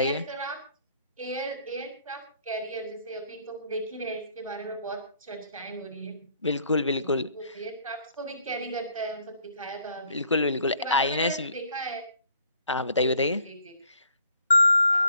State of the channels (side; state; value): both; inverted; correlation -0.62